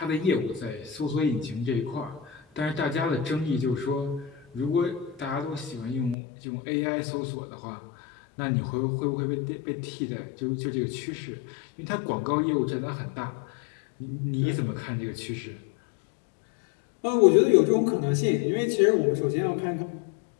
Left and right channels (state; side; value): drops out; right; at 6.2 s